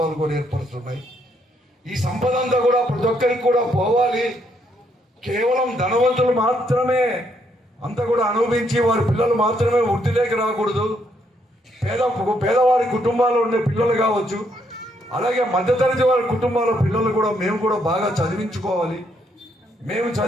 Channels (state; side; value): normal; both; correlation 0.73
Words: కూడా ఏర్పరుస్తున్నాయి. ఈ సంపద అంతా కూడా ప్రతి ఒక్కరికి కూడా పోవాలి. కేవలం ధనవంతులు మాత్రమే అంతా కూడా అనుభవించి వారి పిల్లలు మాత్రమే వృద్ధిలోకి రాకూడదు. పేదవారి కుటుంబాల్లో ఉండే పిల్లలు కావచ్చు, అలాగే మధ్యతరగతి వారి కుటుంబాల పిల్లలు కూడా మేము కూడా బాగా చదివించుకోవాలి. మేము